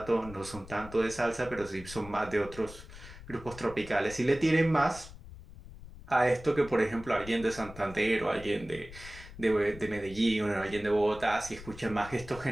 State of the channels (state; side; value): noise; left; rumble, 16 dB below the sound